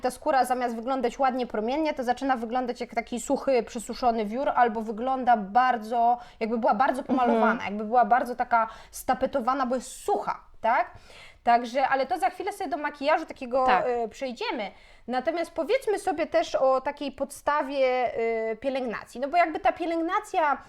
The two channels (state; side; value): identical; both; correlation 1.00